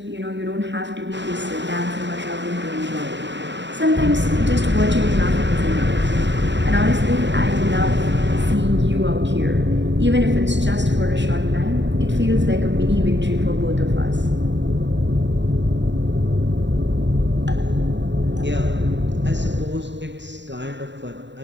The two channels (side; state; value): left; late; 0.52 ms